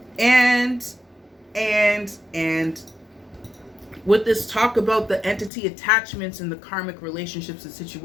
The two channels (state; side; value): drops out; right; at 5.5 s